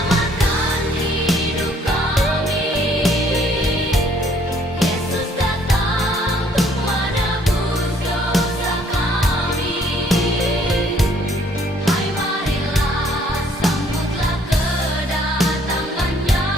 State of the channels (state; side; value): normal; both; correlation 0.63